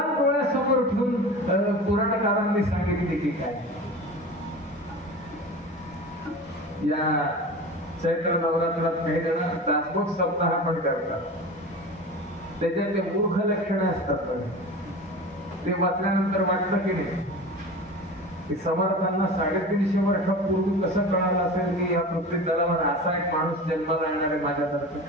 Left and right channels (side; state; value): both; normal; correlation 0.33